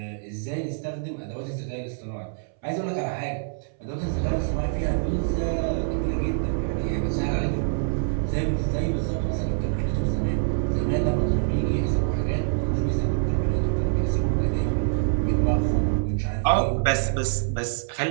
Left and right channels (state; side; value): silent; left; 61 dB below the other